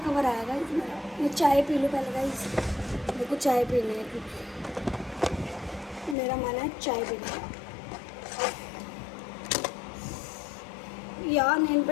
कवर आया गाइस मेरा। मैं चाय पी लूँ पहले गाइस, मेरे को चाय पीनी है क्योंकि मेरा मन है चाय पीने का। यार नेल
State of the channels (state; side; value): drops out; right; at 6.2 s